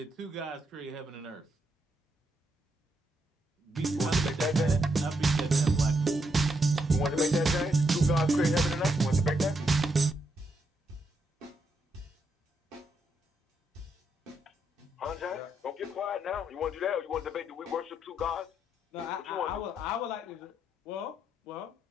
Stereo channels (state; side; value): normal; both; correlation 0.79